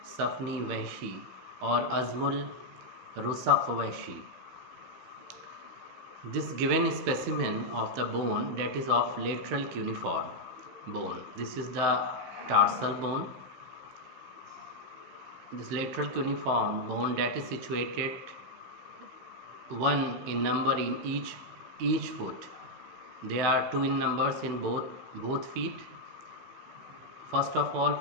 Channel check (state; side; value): late; left; 16 ms